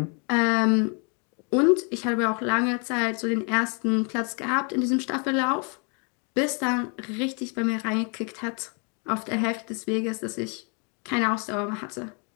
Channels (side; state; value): right; quieter; 36.6 dB